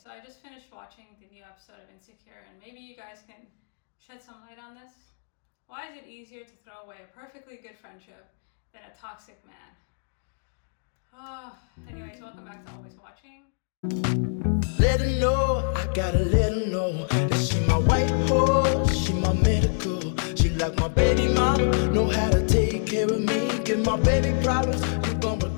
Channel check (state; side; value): silent; right; digital silence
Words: so I just finished watching the new episode of Insecure, and maybe you guys can shed some light on this. Why is it easier to throw away a perfectly good friendship than a toxic man? Oh, anyways, welcome back to Always Watching. Let her know, I gotta let her know that she my white horse, she my medical. She like my baby mama, know how to take care of me. Give my baby problems, you gon'